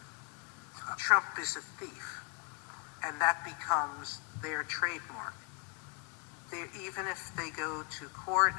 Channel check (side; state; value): right; quieter; 34.8 dB